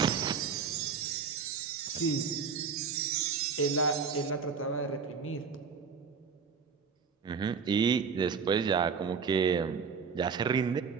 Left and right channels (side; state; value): left; quieter; 5.9 dB